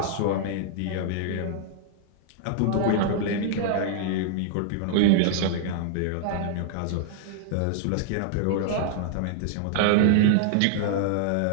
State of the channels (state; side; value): different; both; correlation -0.01